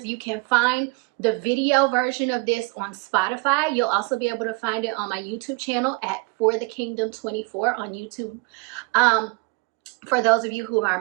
you can find the video version of this on Spotify. You'll also be able to find it on my YouTube channel at For the Kingdom 24 on YouTube. For those of you who are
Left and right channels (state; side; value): quieter; left; 27.1 dB